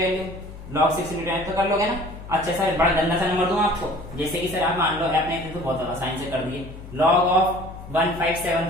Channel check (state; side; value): noise; left; hum, 14 dB below the sound